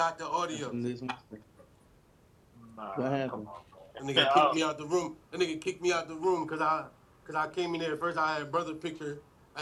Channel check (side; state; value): both; identical; correlation 1.00